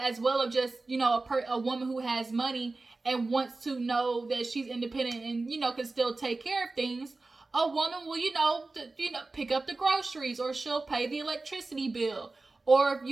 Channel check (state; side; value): quieter; left; 3.5 dB